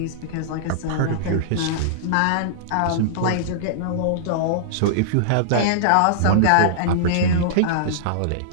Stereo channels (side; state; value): both; different; correlation -0.02